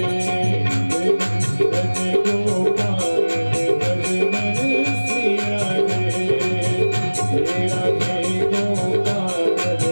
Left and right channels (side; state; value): both; inverted; correlation -1.00